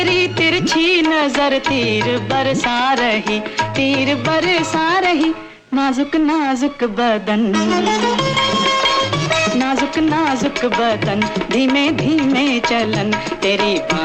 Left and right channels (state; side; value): identical; both; correlation 1.00